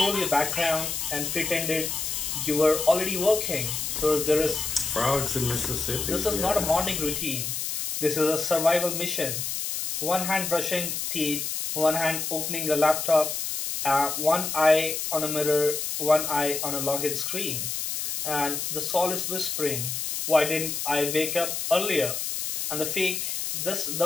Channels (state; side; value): noise; left; hiss, 3 dB below the sound